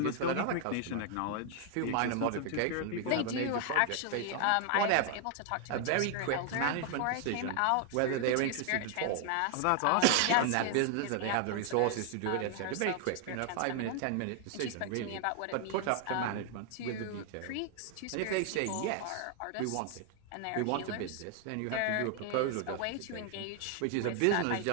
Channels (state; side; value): different; both; correlation 0.00